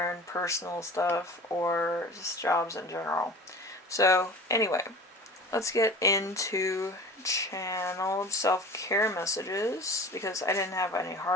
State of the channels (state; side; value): normal; both; correlation 0.39